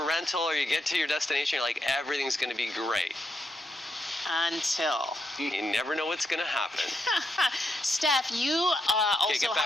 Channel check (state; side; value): normal; both; correlation 0.82